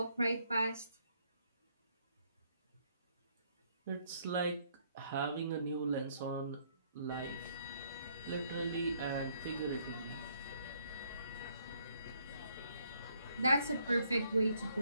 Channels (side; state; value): both; inverted; correlation -0.69